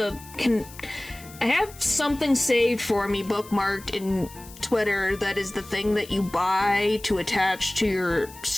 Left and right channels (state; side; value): noise; left; hiss, 19 dB below the sound